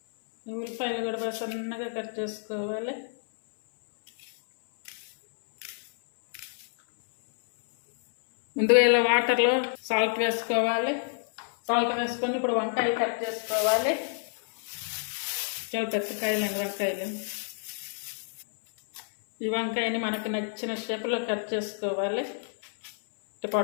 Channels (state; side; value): silent; right; 59 dB below the other